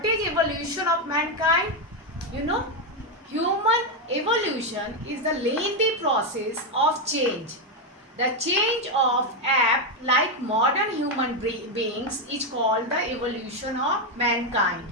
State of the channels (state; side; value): normal; both; correlation 0.05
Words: is evolution of mankind? You know, human evolution is the lengthy process of change. The change of ape like modern human beings is called the evolution of mankind.